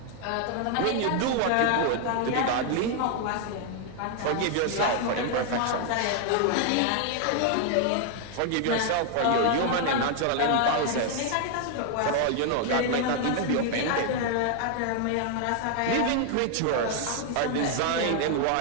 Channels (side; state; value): both; different; correlation 0.00